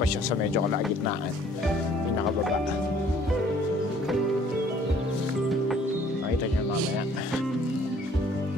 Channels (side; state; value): both; normal; correlation 0.58